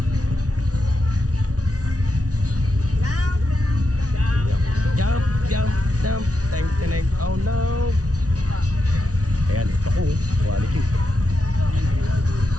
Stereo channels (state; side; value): late; left; 0.67 ms